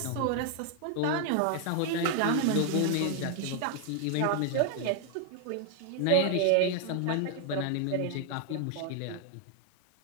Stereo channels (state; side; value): different; both; correlation 0.00